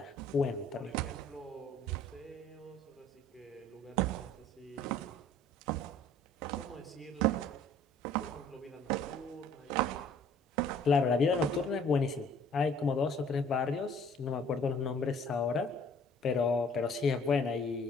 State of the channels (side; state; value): both; normal; correlation 0.54